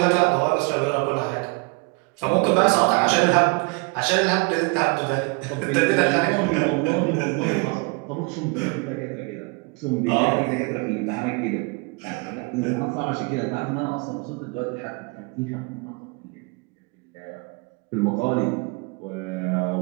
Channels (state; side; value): quieter; left; 30.0 dB